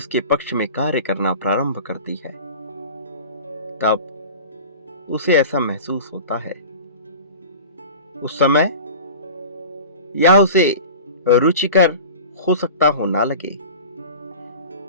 पक्ष में कार्य करना प्रारंभ करती है, तब उसे ऐसा महसूस होता है। उस समय यह उसे रुचिकर हो सकता हो ना लगे,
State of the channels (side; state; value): both; inverted; correlation -0.37